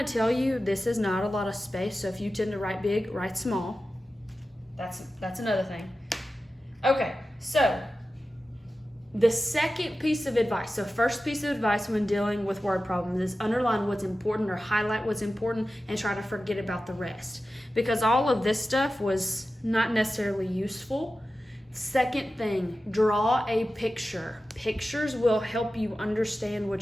tell you this is not a lot of space, so if you tend to write big, write small. That's another thing. Okay, so the second piece of advice, so first piece of advice when dealing with word problems is underline what's important or highlight what's important and try to forget about the rest. Because all of this stuff was not necessarily useful. Second thing, draw a picture. Pictures will help you understand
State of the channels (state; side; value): normal; both; correlation 0.94